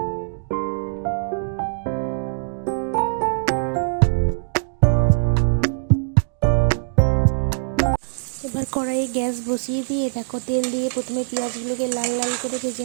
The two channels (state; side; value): silent; left; digital silence